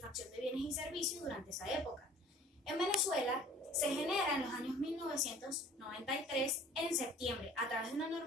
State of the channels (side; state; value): both; normal; correlation 0.49